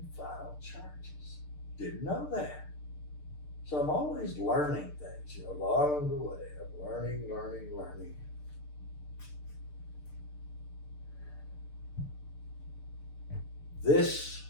file charges. Didn't know that. So I'm always learning things, along the way. I'm learning. This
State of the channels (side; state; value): right; late; 6.7 ms